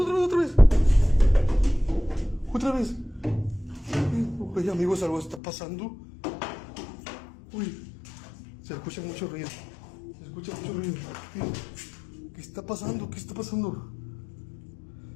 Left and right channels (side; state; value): right; drops out; at 5.4 s